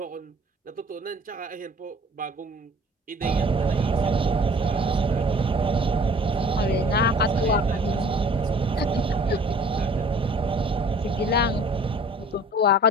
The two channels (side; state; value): both; normal; correlation 0.50